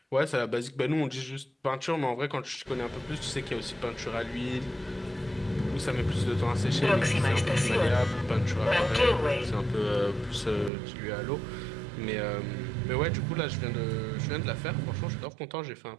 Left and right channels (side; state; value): left; drops out; at 10.7 s